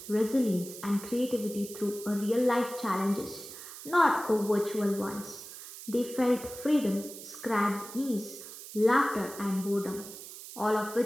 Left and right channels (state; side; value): noise; right; hiss, 13 dB below the sound